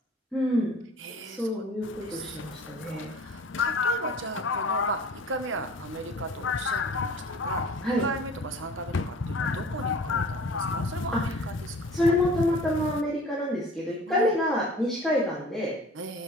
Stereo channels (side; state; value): both; normal; correlation 0.45